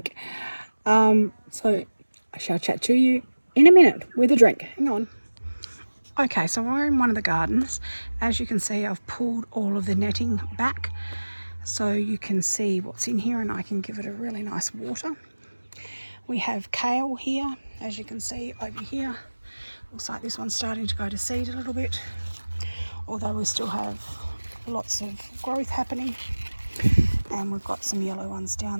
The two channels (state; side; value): inverted; both; correlation -1.00